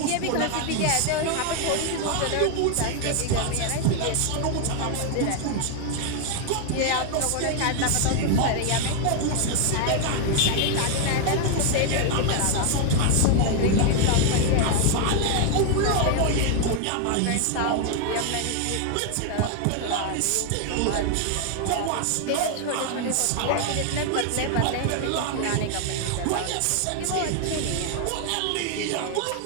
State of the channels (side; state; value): both; different; correlation 0.00